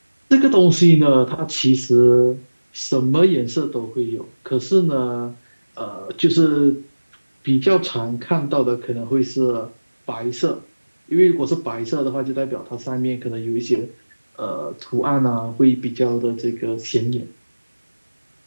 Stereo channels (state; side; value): inverted; both; correlation -1.00